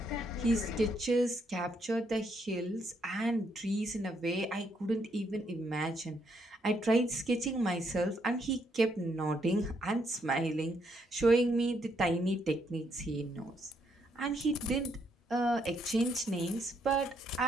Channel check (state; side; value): normal; both; correlation 0.74